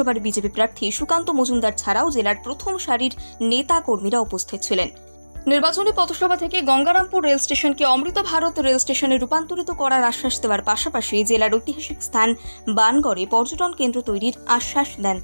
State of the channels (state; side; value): inverted; both; correlation -1.00